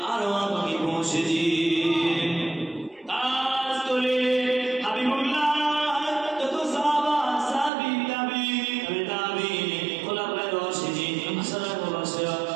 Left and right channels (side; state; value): left; drops out; at 7.7 s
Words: আরওয়াহ পাকে পৌঁছে দিন। কাজ করে হাবিবুল্লাহ যত সাহাবা সাহাবী তাবিঈন খোলাফায়ে রাশিদিন আশরাফুল মুবাশশিরা